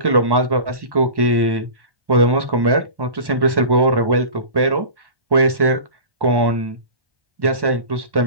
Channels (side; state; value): left; late; 1.1 ms